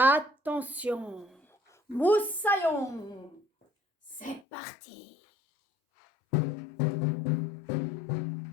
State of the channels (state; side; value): drops out; right; at 4.4 s